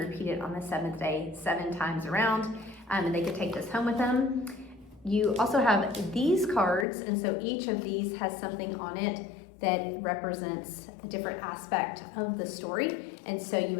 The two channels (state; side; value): drops out; right; at 6.9 s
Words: it on the 7th day, 7 times around. And they could take this home with them. You also have these cards, and so each of these has something on it that represents a different aspect of the story. And so you